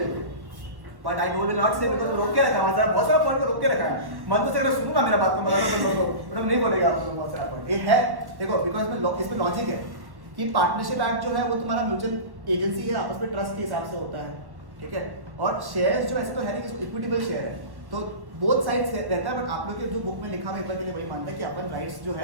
but I will not say because रोक के रखा है, मतलब बहुत सारा पॉइंट को रोक के रखा है। मन तो से अगर सुनूंगा मेरा बात को मतलब तुम लोगों को मतलब नहीं बोलेगा आप लोग बहुत सारा पॉइंट ये है। देखो बिकॉज़ इसमें लॉजिक है कि पार्टनरशिप एक्ट जो है वो तुम्हारा म्यूचुअल एजेंसी है, आपस में ट्रस्ट के हिसाब से होता है, ठीक है। और शेयर्स जो ऐसे तो है नहीं कि इक्विटेबल शेयर है, तो बोथ साइड्स रहता है, बट आप लोग के जो बुक में लिखा हुआ एक बार के लिए वही मानता है कि अपन राइट्स जो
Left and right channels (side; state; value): left; late; 1.1 ms